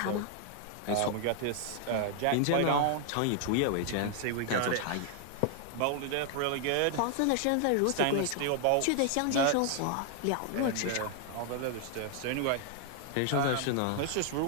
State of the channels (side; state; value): both; different; correlation 0.00